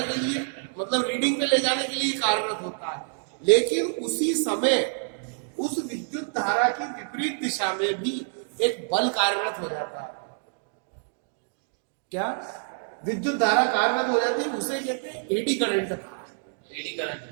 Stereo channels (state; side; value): silent; left; digital silence